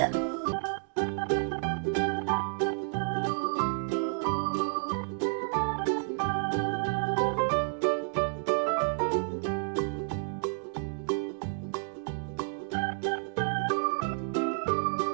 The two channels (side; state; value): left; silent; digital silence